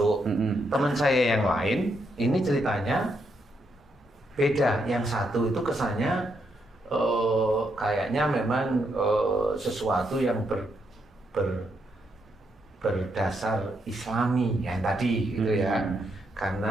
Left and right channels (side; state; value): both; normal; correlation 0.79